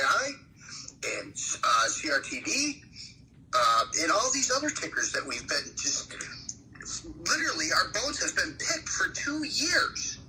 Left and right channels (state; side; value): identical; both; correlation 1.00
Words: and CRTD and all these other tickers that we've been just literally, our boats has been picked for 2 years.